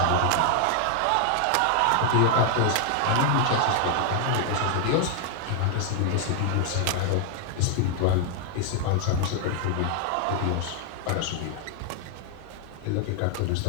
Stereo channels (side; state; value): both; different; correlation 0.00